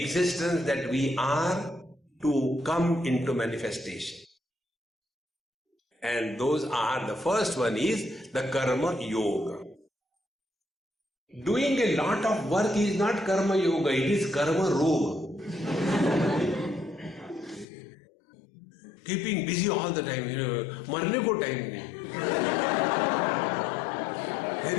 that we are to come into manifestation. And those are, the first one is the karma yoga. Doing a lot of work is not karma yoga, it is karma roga. Keeping busy all the time, marne ko time nahi.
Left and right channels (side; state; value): right; drops out; at 17.7 s